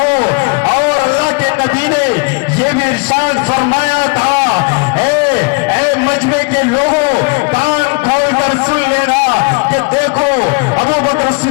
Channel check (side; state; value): right; quieter; 29.1 dB